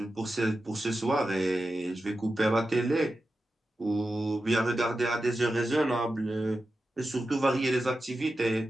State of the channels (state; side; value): normal; both; correlation 0.91